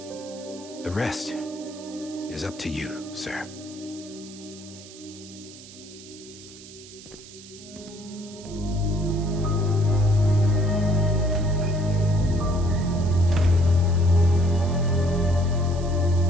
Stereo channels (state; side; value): noise; right; hiss, 18 dB below the sound